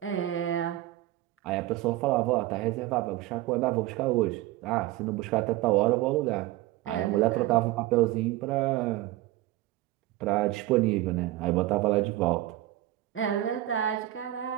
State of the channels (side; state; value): left; quieter; 16.0 dB